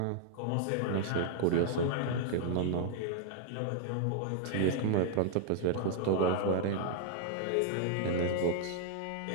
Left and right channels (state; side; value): different; both; correlation -0.01